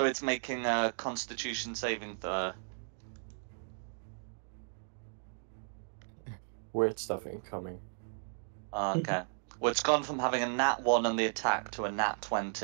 it's making a Constitution saving throw. Weird stuff incoming. Okay. Well, it's gone from having a nat 1 on the attack to a nat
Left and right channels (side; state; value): left; silent; digital silence